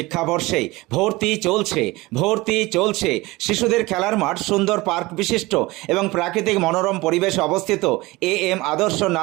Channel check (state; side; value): quieter; left; 21.1 dB